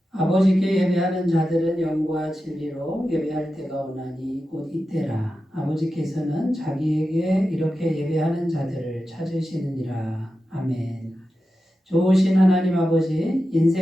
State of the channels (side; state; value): both; normal; correlation 0.91